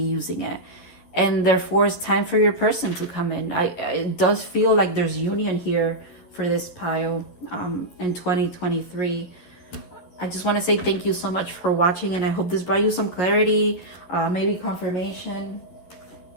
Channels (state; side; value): late; right; 12 ms